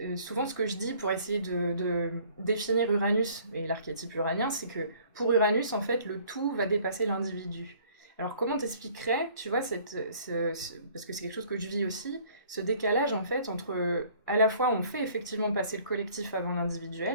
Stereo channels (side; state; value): both; inverted; correlation -0.56